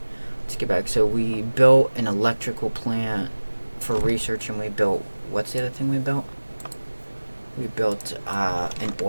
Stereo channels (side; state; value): both; inverted; correlation -1.00